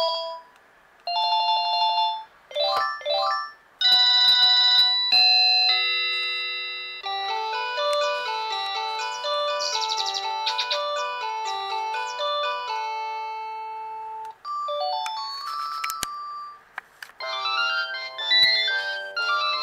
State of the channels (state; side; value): identical; both; correlation 1.00